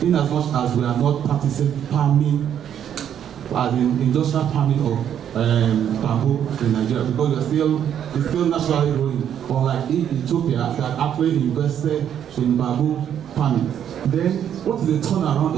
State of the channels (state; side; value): quieter; left; 9.4 dB